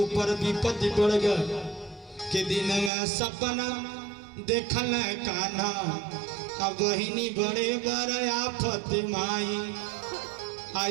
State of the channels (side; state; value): left; drops out; at 2.9 s